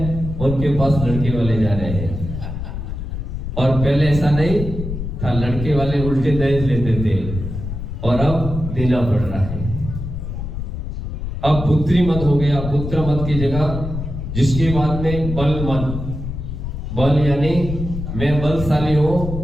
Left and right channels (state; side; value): noise; left; rumble, 6 dB below the sound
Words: उनके पास लड़के वाले जा रहे हैं, और पहले ऐसा नहीं था, लड़के वाले उल्टे दहेज लेते थे, और अब देना पड़ रहा है। अब पुत्री मत हो गया, पुत्र मत की जगह। जिसके बाद में बल मत, बल यानी मैं बलशाली हूं,